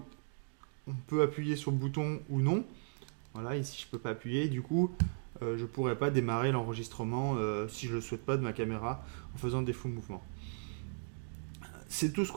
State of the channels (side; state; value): left; silent; digital silence